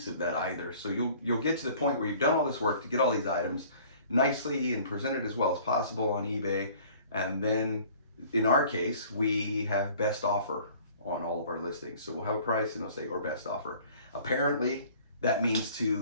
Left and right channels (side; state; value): both; inverted; correlation -0.51